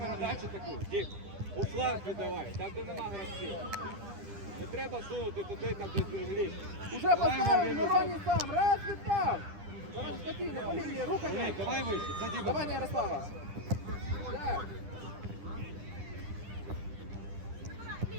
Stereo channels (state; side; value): late; left; 10 ms